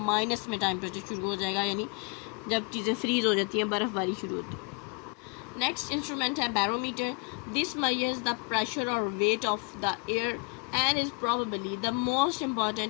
माइनस में टेम्परेचर शुरू हो जाएगा, यानी जब चीज़ें फ्रीज़ हो जाती हैं, बर्फ़बारी शुरू होती है. नेक्स्ट इंस्ट्रूमेंट है barometer. This measures the pressure or weight of the air and is probably the most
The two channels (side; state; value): right; quieter; 32.9 dB